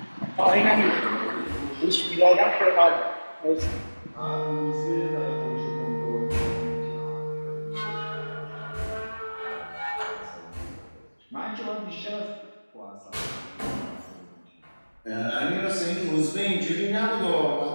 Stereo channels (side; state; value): both; inverted; correlation -1.00